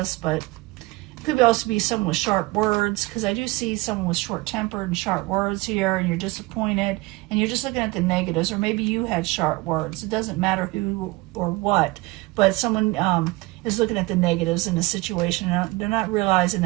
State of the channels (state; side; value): quieter; left; 22.0 dB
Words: but Could also be someone with sharp words, because I do see someone with short-tempered and sharp words here, and you're disappointed, and you're just looking at the negatives, or maybe you had sharp words. It doesn't matter who or what, but someone is looking at the negatives in a situation, and they're not realizing